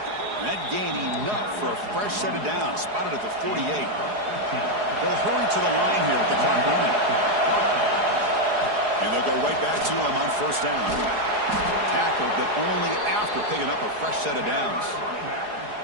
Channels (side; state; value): left; late; 4.8 ms